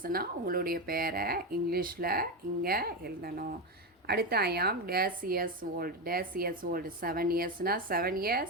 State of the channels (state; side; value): normal; both; correlation 0.13